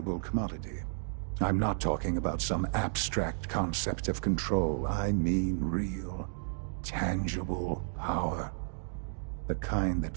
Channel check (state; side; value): silent; left; digital silence